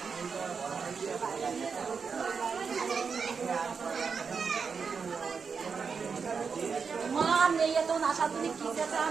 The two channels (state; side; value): quieter; left; 5.6 dB